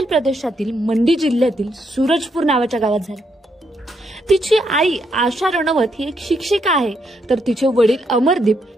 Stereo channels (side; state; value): both; normal; correlation 0.77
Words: प्रदेशातील मंडी जिल्ह्यातील सूरजपूर नावाच्या गावात झाला। तिची आई आशा रनौत ही एक शिक्षिका आहे, तर तिचे वडील अमरदीप